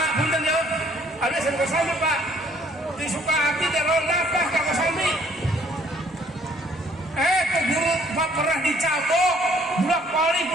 punten ya. Ada SMP Kosambi Pak. Di Sukahati dan Londapah ke Kosambi. Ke guru Pak pernah dicabok, budak pali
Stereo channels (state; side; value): normal; both; correlation 0.61